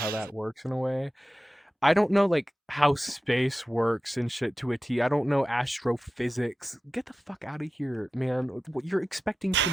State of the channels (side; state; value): both; normal; correlation 0.94